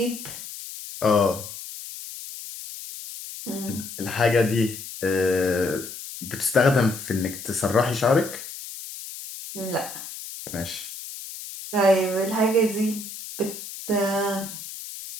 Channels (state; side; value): noise; left; hiss, 11 dB below the sound